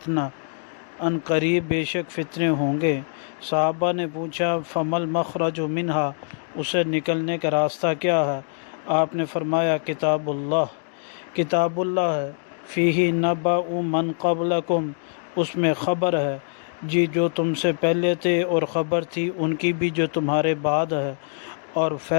ان قریب بے شک فتنے ہوں گے۔ صحابہ نے پوچھا فمل مخرج منہا، اسے نکلنے کا راستہ کیا ہے؟ آپ نے فرمایا کتاب اللہ ہے، فیہ نبأ من قبلکم، اس میں خبر ہے جی جو تم سے پہلے تھے، اور خبر تھی ان کی بھی جو تمہارے بعد ہے، اور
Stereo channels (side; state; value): right; silent; digital silence